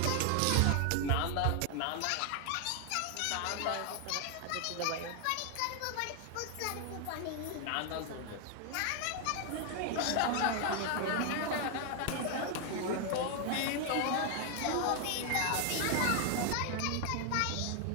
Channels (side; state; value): both; different; correlation 0.00